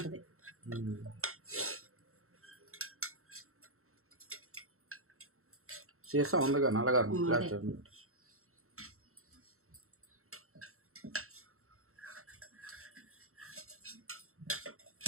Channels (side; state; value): left; late; 0.63 ms